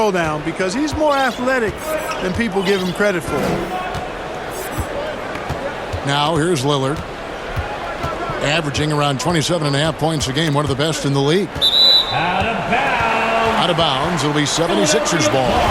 because he's more athletic than people give him credit for. Now here's Lillard. Averaging around 27.5 points a game, one of the best in the league. Out of bounds. Out of bounds. It'll be 76ers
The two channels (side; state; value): both; identical; correlation 1.00